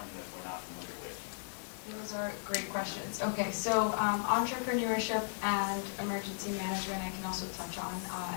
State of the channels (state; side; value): silent; right; digital silence